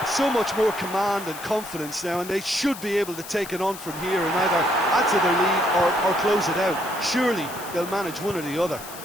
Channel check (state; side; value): noise; left; hiss, 13 dB below the sound